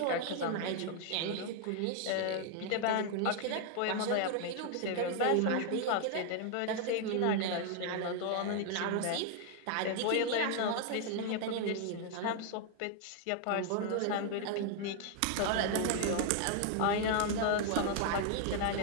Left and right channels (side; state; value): both; different; correlation 0.00